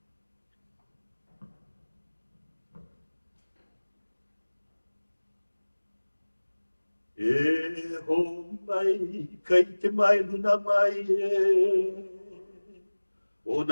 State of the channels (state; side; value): inverted; both; correlation -1.00